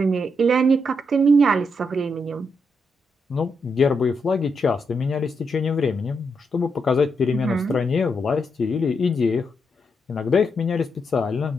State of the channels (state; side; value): normal; both; correlation 0.81